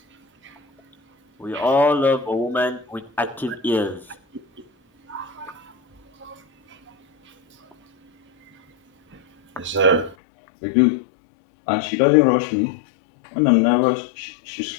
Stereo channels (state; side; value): drops out; right; at 10.2 s